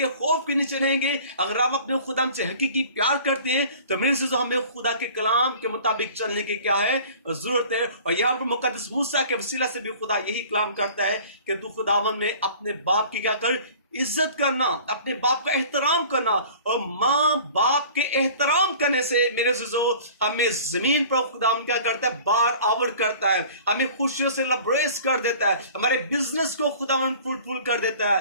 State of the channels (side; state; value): both; inverted; correlation -0.46